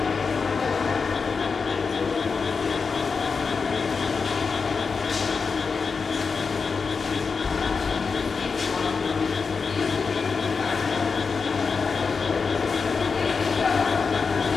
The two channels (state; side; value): quieter; right; 5.1 dB